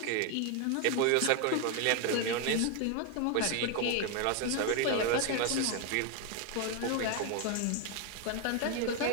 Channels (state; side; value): different; both; correlation 0.01